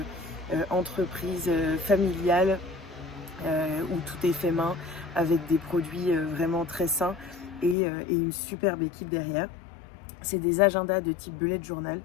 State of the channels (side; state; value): right; drops out; at 7.8 s